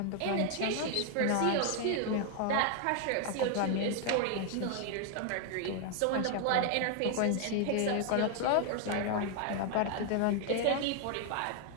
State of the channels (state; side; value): different; both; correlation 0.00